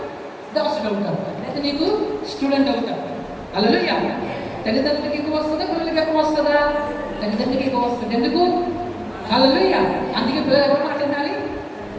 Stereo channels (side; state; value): both; identical; correlation 1.00